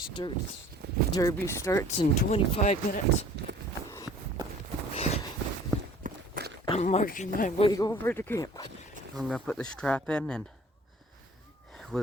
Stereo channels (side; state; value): both; normal; correlation 0.50